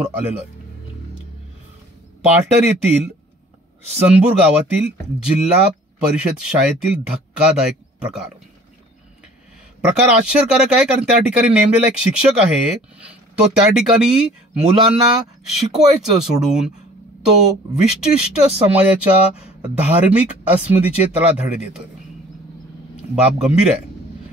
आलेलो आहे। पाटण येथील सनपूर गावातील जिल्हा परिषद शाळेतील धक्कादायक प्रकार आश्चर्यकारक आहे, कारण त्या ठिकाणी नेमलेला एक शिक्षक आहे, तो त्या ठिकाणी मुलांना शिकवायचं सोडून तो विशिष्ट समाजाच्या धार्मिक अस्मितेचे त्याला धडे देतोय। बाब गंभीर आहे,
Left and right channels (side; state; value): both; normal; correlation 0.51